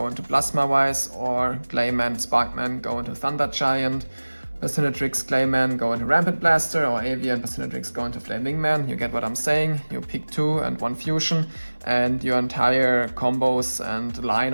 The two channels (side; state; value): both; inverted; correlation -1.00